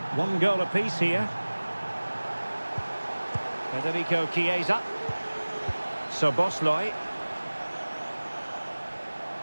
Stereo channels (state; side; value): inverted; both; correlation -1.00